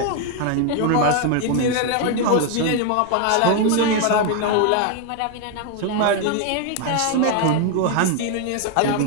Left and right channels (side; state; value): both; different; correlation 0.01